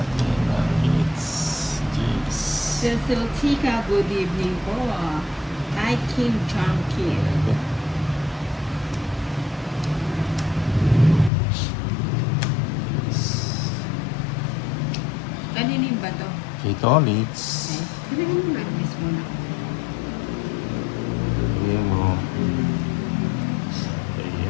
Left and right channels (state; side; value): drops out; right; at 11.3 s